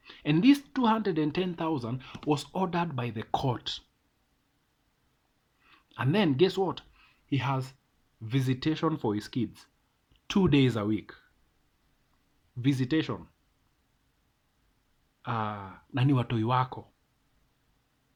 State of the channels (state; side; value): identical; both; correlation 1.00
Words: And this 210,000 was ordered by the court. And then guess what? He has visitation for his kids 2 days a week. Visitation. Nani watoi wako.